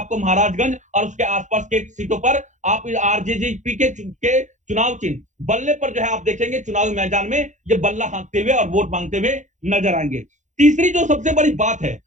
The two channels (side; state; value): left; late; 0.35 ms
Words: महाराजगंज और उसके आसपास के सीटों पर आप आरजेजेपी के चुनाव चिन्ह बल्ले पर जो है आप देखेंगे चुनावी मैदान में ये बल्ला हाँकते हुए और वोट मांगते हुए नजर आएंगे। तीसरी जो सबसे बड़ी बात है